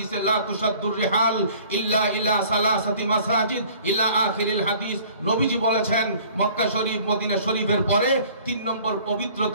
লা তুশাদ্দুর রিহাল ইল্লা ইলা সালাসাতি মাসাজিদ ইলা আখিরিল হাদিস। নবীজি বলেছেন মক্কা শরীফ মদিনা শরীফের পরে 3 নম্বর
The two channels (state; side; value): inverted; both; correlation -0.52